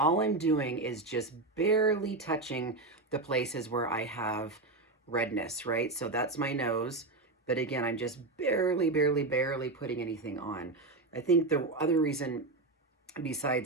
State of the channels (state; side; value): quieter; left; 3.2 dB